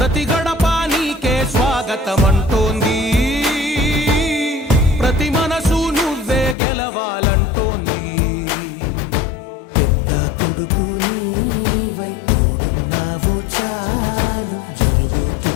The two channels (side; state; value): right; drops out; at 6.6 s